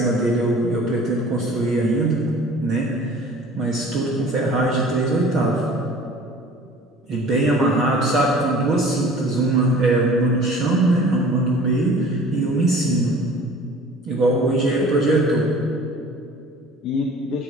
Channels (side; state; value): both; normal; correlation 0.47